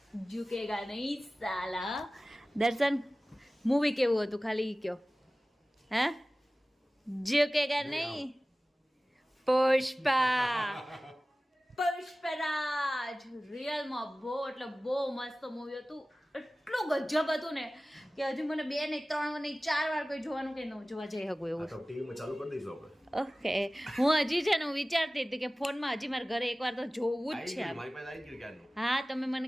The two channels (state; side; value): normal; both; correlation 0.97